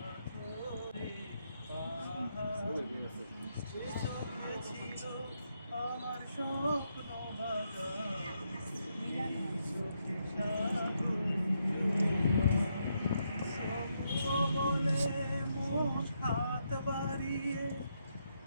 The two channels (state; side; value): inverted; both; correlation -0.79